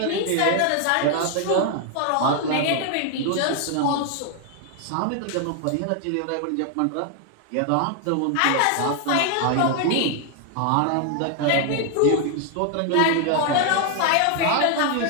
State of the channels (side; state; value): both; different; correlation 0.00